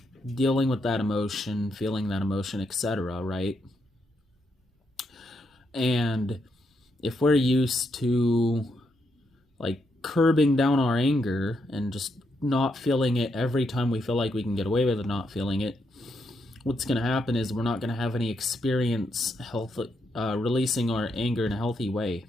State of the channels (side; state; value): both; normal; correlation 0.80